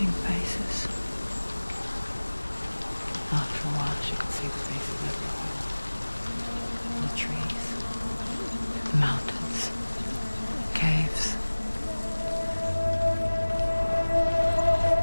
faces. After a while, she could see the faces everywhere. The trees, the mountains, caves.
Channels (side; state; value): both; inverted; correlation -1.00